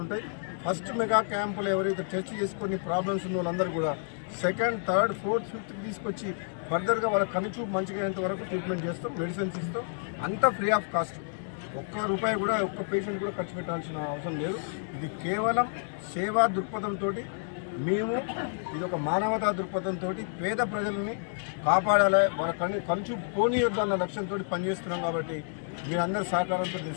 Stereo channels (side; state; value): right; silent; digital silence